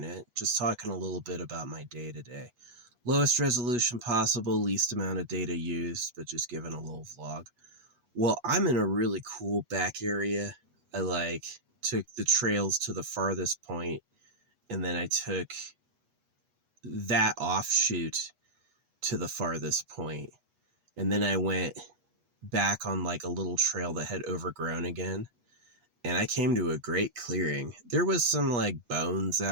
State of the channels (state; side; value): late; left; 8.3 ms